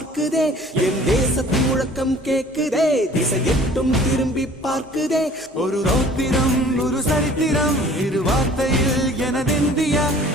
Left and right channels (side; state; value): both; normal; correlation 0.50